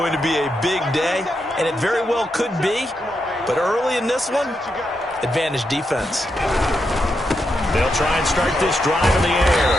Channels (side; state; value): both; normal; correlation 0.84